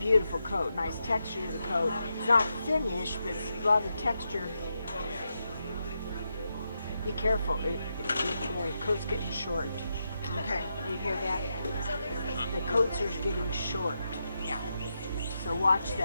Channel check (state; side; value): inverted; both; correlation -0.85